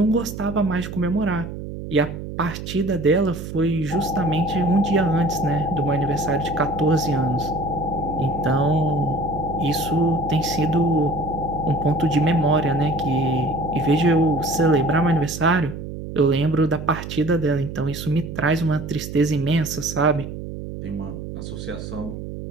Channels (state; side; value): noise; right; hum, 9 dB below the sound